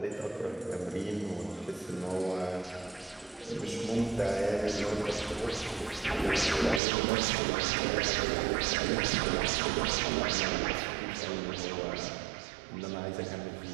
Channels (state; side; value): drops out; left; at 6.8 s